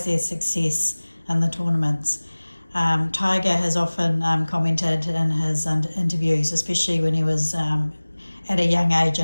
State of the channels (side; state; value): both; inverted; correlation -1.00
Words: their success in the tournaments. Tiger has often commented in his interviews, especially when he was at a young age